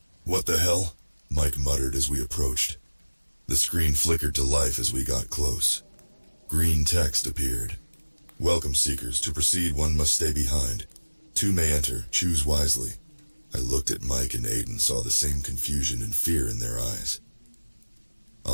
What the hell? Mike muttered as we approached. The screen flickered to life as we got close. Green text appeared. Welcome, seekers. To proceed, one must stay behind. Two may enter. Choose wisely. I looked at Mike and Aiden, saw the same confusion and fear in their eyes.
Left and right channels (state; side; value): inverted; both; correlation -1.00